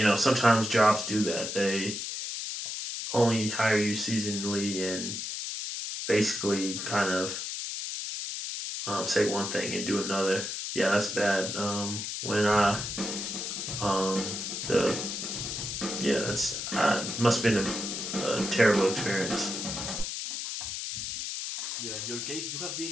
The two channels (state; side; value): noise; left; hiss, 4 dB below the sound